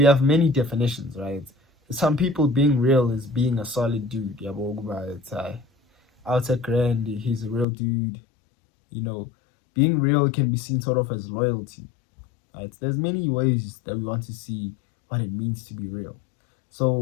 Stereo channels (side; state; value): right; drops out; at 7.7 s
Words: have many definitions, right? For some people, being real is being a solid dude. Outer grand, he's a real dude. Being real can be seen sort of as loyalty. Right? There's many ways that we want to see what it means to be real.